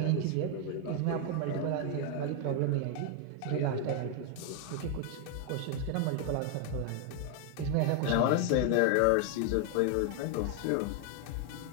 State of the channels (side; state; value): both; different; correlation 0.00